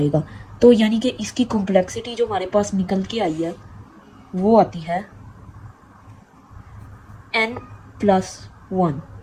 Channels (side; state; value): both; identical; correlation 1.00